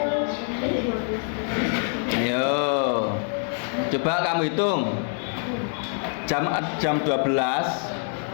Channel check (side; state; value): right; silent; 56 dB below the other